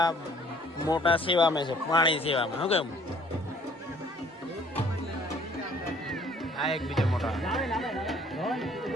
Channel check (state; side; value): normal; both; correlation 0.58